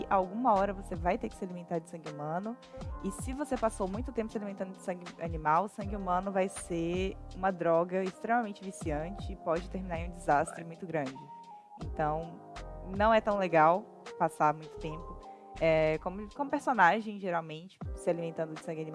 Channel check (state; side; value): identical; both; correlation 1.00